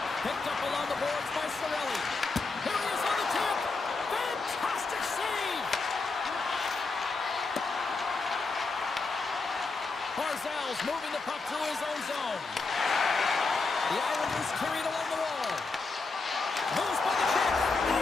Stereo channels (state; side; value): quieter; right; 4.0 dB